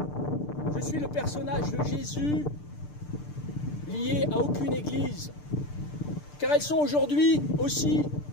Je suis le personnage de Jésus lié à aucune église, car elles sont aujourd'hui aussi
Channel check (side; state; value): right; late; 6.8 ms